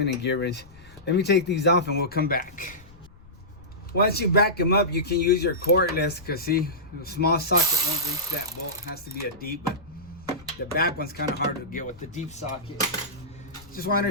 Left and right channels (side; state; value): left; noise; rumble, 23 dB below the sound